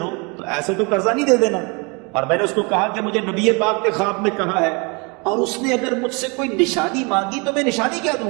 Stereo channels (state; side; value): quieter; left; 30.6 dB